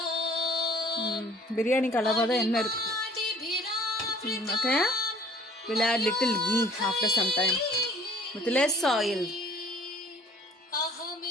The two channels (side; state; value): both; normal; correlation 0.54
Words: பிரியாணிக்கு அளவாக தான் எண்ணெய் இருக்கு. Okay, we'll add little ghee after some time with less oil.